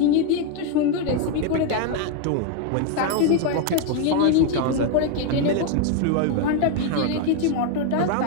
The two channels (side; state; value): both; different; correlation 0.01